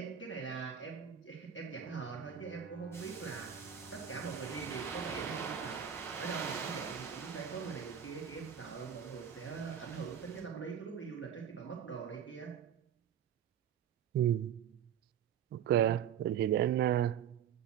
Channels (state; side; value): quieter; left; 8.8 dB